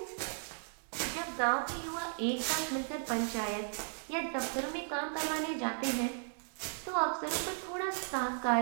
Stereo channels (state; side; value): silent; left; 54 dB below the other